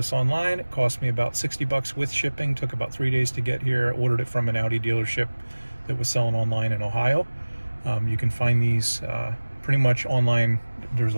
online. It cost me about 60 bucks with shipping. Took about 3 days to get here. I ordered it from an Audi dealership that was selling online in Ohio. You can find these pretty much online. There's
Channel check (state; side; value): inverted; both; correlation -1.00